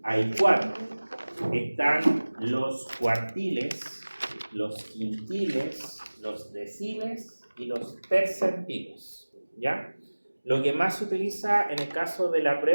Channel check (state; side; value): inverted; both; correlation -1.00